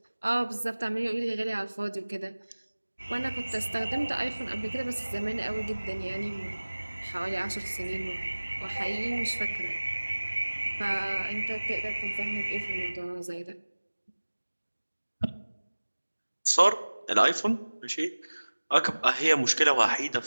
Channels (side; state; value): both; inverted; correlation -1.00